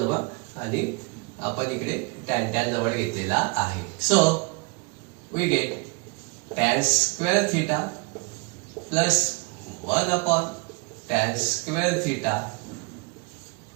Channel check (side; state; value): left; quieter; 29.7 dB